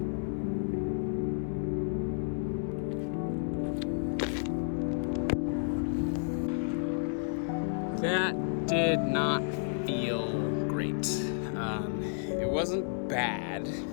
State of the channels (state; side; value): silent; right; digital silence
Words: That did not feel great. It wasn't bad,